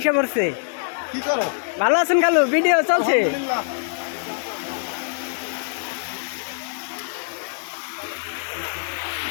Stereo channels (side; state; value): right; silent; digital silence